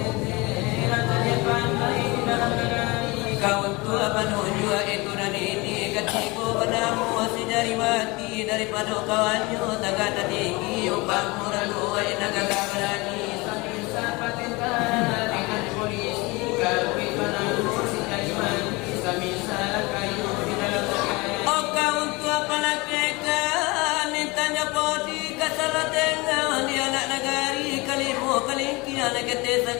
kau tua penuju itu dan ini ketiku padamu si jari mati daripada kawannya tagata tinggi upang murah dua inaga berani dengan polisi kawin padamu si jari mati samisa kayu di dalam negeri oh kau tua palakekan nintanya podi kasalah dengan di anak negari kalimu kalingki anak kete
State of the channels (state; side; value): quieter; right; 24.5 dB